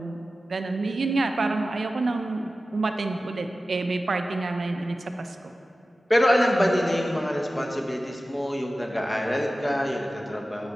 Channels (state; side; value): normal; both; correlation 0.95